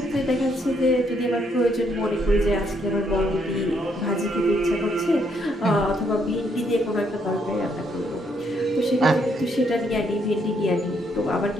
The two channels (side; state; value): both; normal; correlation 0.73